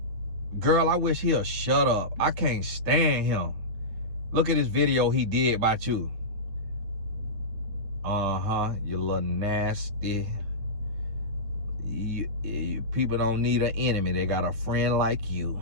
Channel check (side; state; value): left; late; 9.5 ms